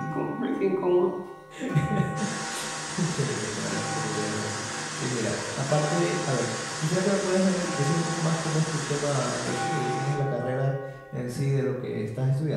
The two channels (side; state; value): both; identical; correlation 1.00